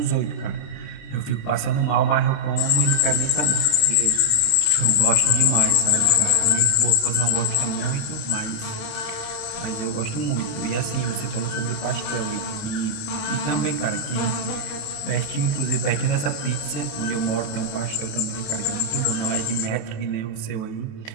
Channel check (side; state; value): right; late; 29 ms